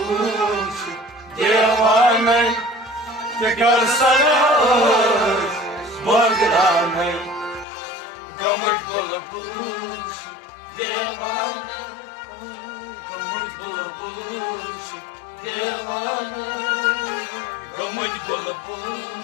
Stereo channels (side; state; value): right; drops out; at 7.7 s